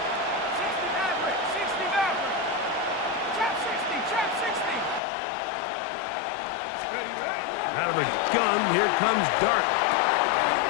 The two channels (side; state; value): right; drops out; at 5.0 s